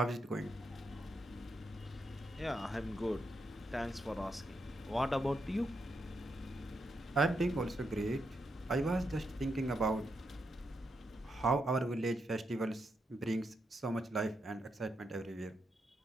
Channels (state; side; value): normal; both; correlation 0.83